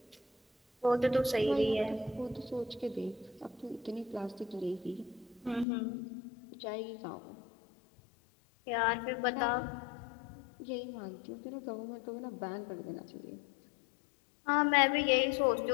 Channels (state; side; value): drops out; right; at 5.7 s